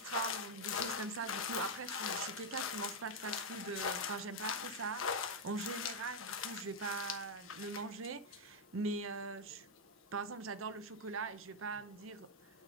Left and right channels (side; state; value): both; normal; correlation -0.01